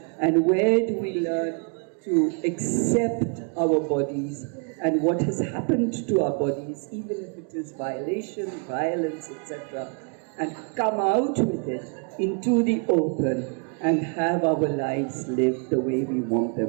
And where do we learn to accept our bodies and what has happened to our bodies, even if it is violation, violence, etc., and come out with it into the open and have our lives lived the way we want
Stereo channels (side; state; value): left; quieter; 38.9 dB